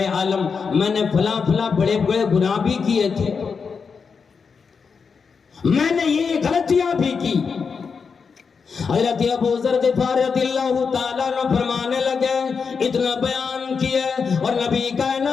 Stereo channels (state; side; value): quieter; right; 5.6 dB